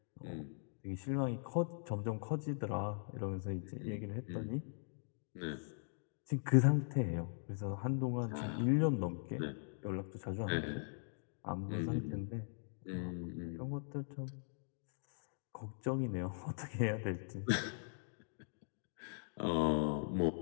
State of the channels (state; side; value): silent; right; digital silence